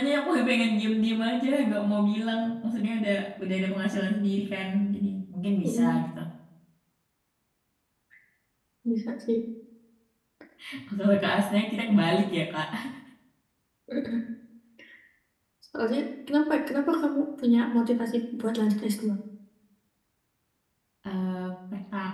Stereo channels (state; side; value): identical; both; correlation 1.00